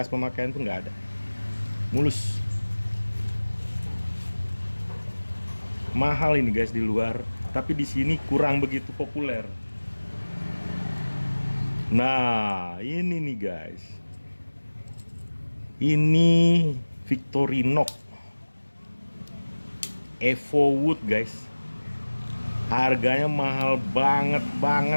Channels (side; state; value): both; inverted; correlation -1.00